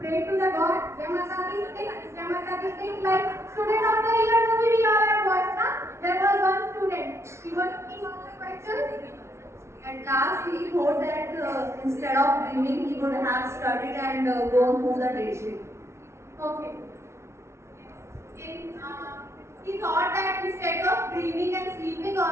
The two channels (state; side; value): late; left; 0.13 ms